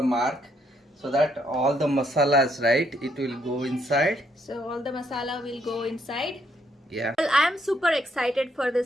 mark so that all the masalas, right? It will go inside. So all the masala will go inside. Yeah. Well, I am super excited for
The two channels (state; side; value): normal; both; correlation 0.73